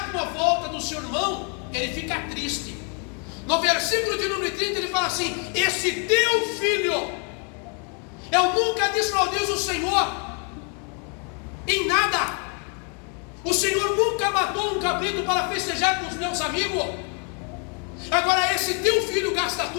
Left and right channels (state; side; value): quieter; right; 38.2 dB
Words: com a volta do seu irmão, ele fica triste. No versículo de número 30 ele fala assim: esse teu filho, eu nunca desmaldizo o Senhor em nada. O Senhor nunca matou um cabrito para festejar com os meus amigos. Agora esse teu filho gasta